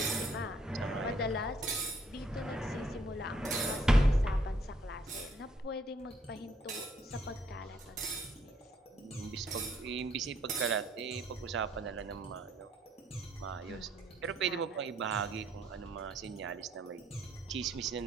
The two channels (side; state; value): both; normal; correlation 0.67